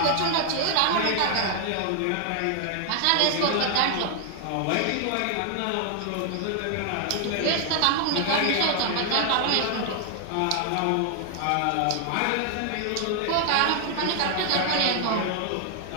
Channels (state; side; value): different; both; correlation 0.00